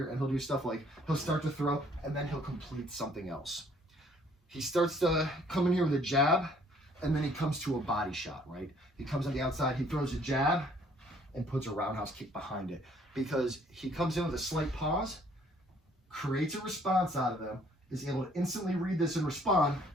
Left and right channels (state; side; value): normal; both; correlation 0.61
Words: and he'll do stuff like he'll start to throw and then he'll complete something else. He starts to come in here with a jab and then he comes to a body shot, right? He comes on the outside, he throws a jab and puts a roundhouse kick behind it because he comes in with a slight pause, creates a response out of them, is able to instantly read this and respond